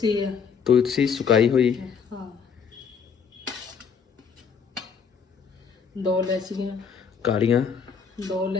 है, तुलसी सुकाई हुई। हाँ 2 इलायचियाँ कालियां 2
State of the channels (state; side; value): quieter; right; 6.4 dB